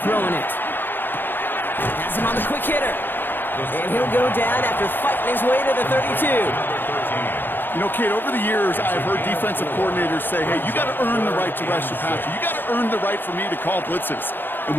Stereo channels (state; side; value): late; right; 0.097 ms